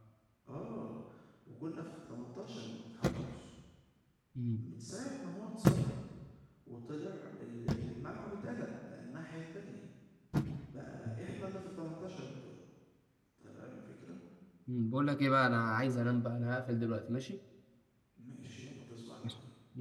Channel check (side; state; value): both; identical; correlation 1.00